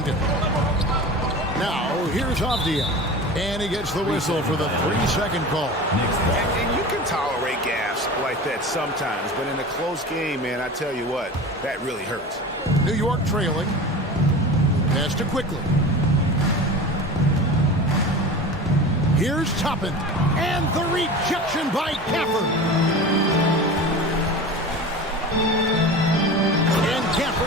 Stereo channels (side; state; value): both; normal; correlation 0.33